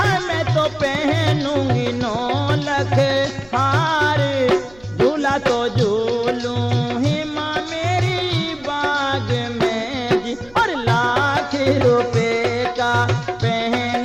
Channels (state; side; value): noise; right; hum, 26 dB below the sound